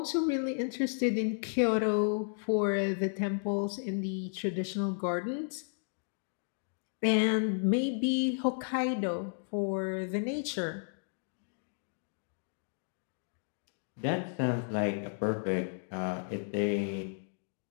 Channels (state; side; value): silent; right; digital silence